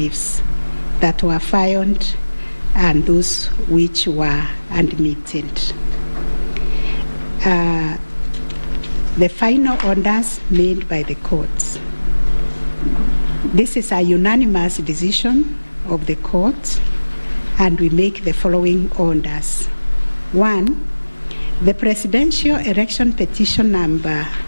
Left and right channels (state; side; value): inverted; both; correlation -1.00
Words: that were filed and those which were admitted. The final orders made by the courts. This is a unanimous decision of the court, and we make the following orders. 1, the presidential election petition number